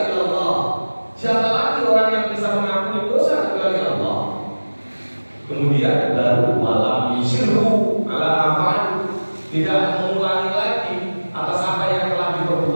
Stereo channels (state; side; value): inverted; both; correlation -1.00